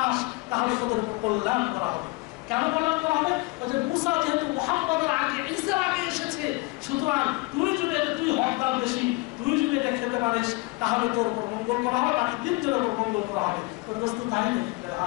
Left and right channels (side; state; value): right; quieter; 25.0 dB